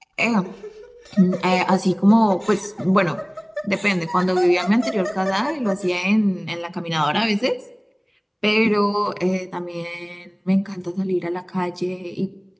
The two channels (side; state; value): both; identical; correlation 1.00